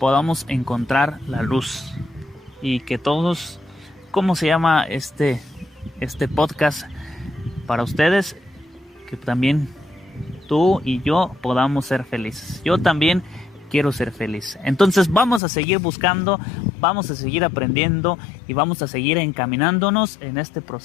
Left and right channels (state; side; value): drops out; right; at 15.4 s